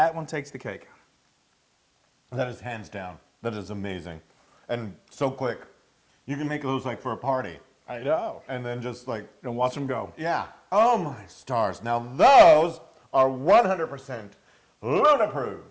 one takes the cake. That is hands down. That is amazing. And so quick. You can make those like for a party. I know. And then just like, And watch them go. yeah. Oh my stars. Now those are 100% Luna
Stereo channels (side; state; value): both; identical; correlation 1.00